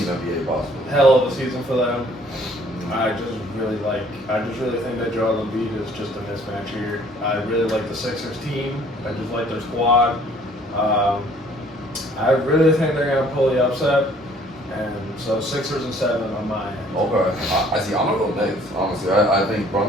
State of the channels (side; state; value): both; normal; correlation 0.58